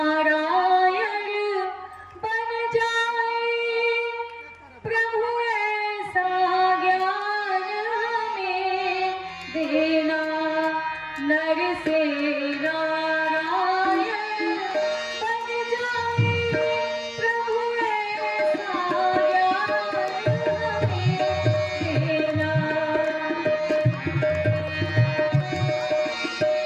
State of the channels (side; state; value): both; identical; correlation 1.00